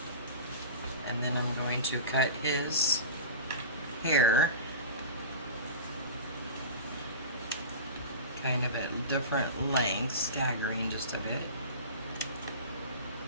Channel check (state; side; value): inverted; both; correlation -0.31